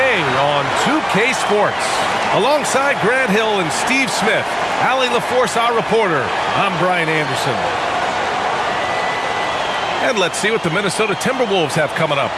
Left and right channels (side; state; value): both; identical; correlation 1.00